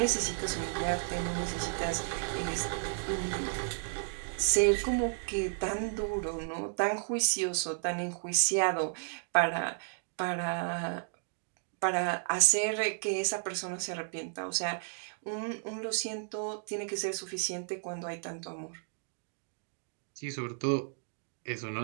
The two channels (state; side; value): silent; left; digital silence